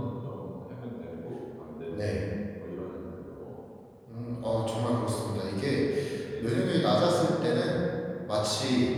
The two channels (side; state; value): both; identical; correlation 1.00